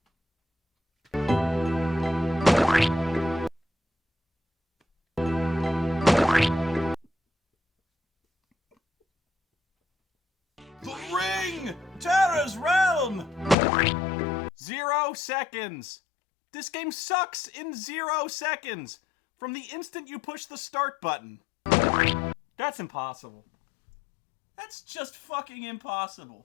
Terror's Realm! 0 seconds! This game sucks in 0 seconds! From the instant you push the start button. That's impossible. That's just fucking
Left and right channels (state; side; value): drops out; right; at 13.6 s